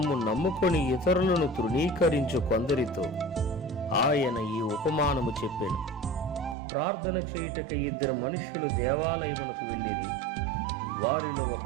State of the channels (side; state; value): left; drops out; at 6.6 s